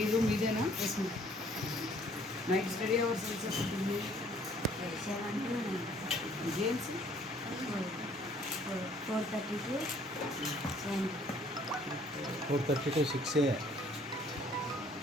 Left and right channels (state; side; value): normal; both; correlation 0.60